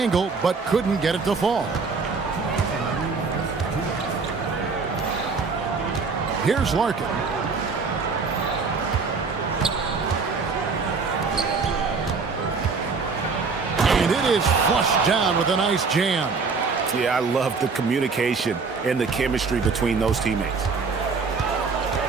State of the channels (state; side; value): quieter; left; 4.7 dB